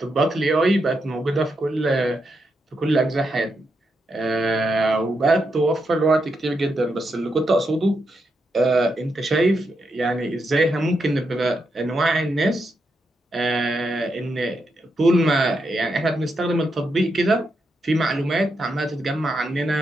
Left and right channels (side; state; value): both; normal; correlation 0.83